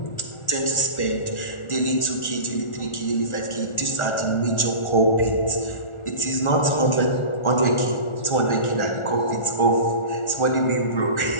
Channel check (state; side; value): late; right; 1.4 ms